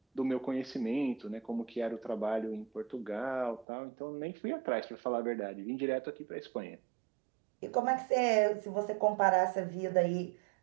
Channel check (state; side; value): drops out; left; at 3.7 s